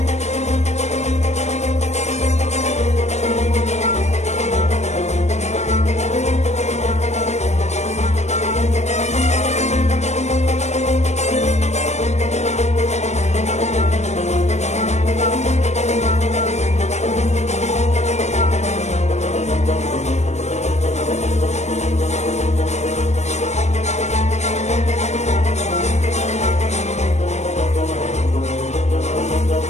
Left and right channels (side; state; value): right; late; 0.32 ms